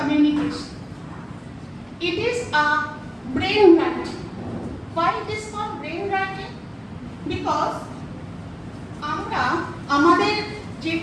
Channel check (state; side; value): identical; both; correlation 1.00